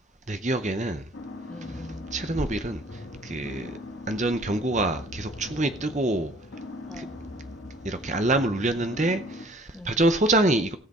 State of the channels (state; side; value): normal; both; correlation 0.54